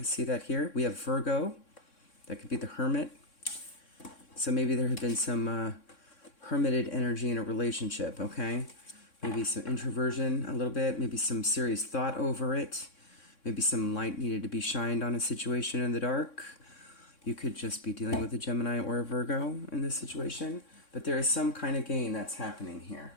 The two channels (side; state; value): right; late; 3.6 ms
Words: see that here. We have Virgo. That could be the Hermit. So maybe there had been some hermited energy in a relationship, okay? Maybe some introversion a little bit. Maybe some serious thought over it. Maybe some light needed to be shined on a situation in the dark. You could just be dealing with a Gemini or a Virgo in this situation. But there is some kind of gain that's happening here,